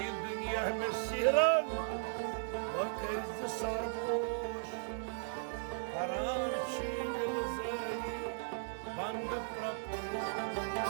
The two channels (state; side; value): silent; left; 53 dB below the other